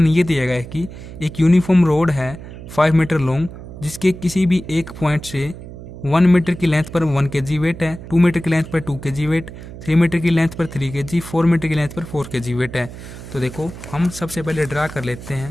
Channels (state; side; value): noise; right; hum, 13 dB below the sound